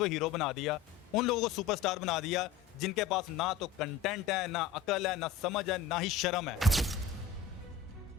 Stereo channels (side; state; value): right; quieter; 7.0 dB